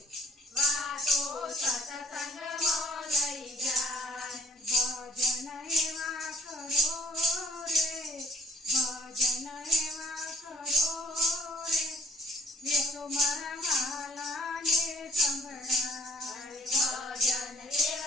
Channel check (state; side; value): normal; both; correlation 0.58